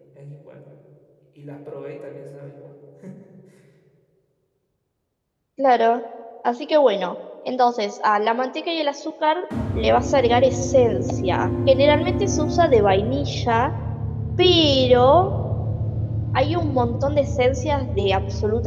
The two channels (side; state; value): both; identical; correlation 1.00